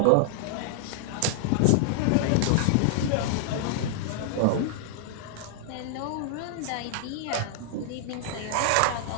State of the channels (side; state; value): both; different; correlation -0.01